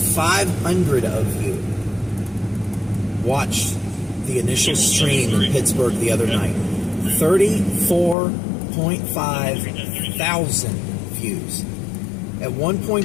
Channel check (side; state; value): right; drops out; at 8.2 s